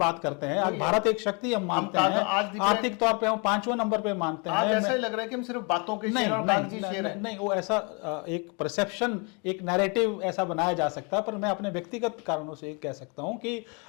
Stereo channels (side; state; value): right; quieter; 33.2 dB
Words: करते हैं। आज भारत एक शक्ति हम मानते हैं, आर्थिक तौर पे हम 5वें नंबर पे मानते हैं। ऐसा ही लग रहा है कि हम सिर्फ बातों के नहीं, वो ऐसा एक परसेप्शन, एक नैरेटिव ऐसा बनाया जा सकता है। पर मैं अपने व्यक्तिगत कारणों से कह सकता हूं कि